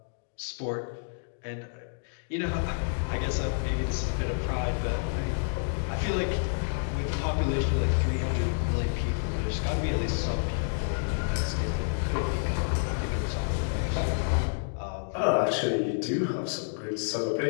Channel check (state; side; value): silent; right; digital silence